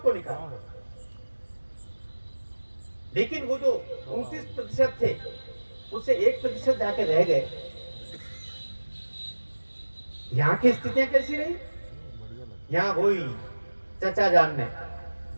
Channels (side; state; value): both; inverted; correlation -1.00